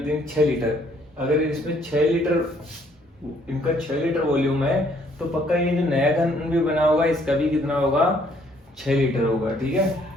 3 6 लीटर। अगर इसमें 6 लीटर, इनका 6 लीटर वॉल्यूम है, तो पक्का ये जो नया घन भी बना होगा इसका भी कितना होगा 6 लीटर होगा, ठीक है।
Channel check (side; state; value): both; normal; correlation 0.65